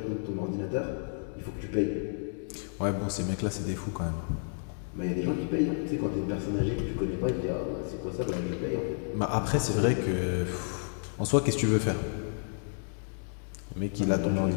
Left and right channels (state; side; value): silent; right; digital silence